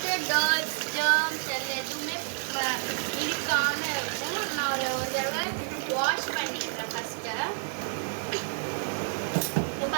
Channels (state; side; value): silent; left; digital silence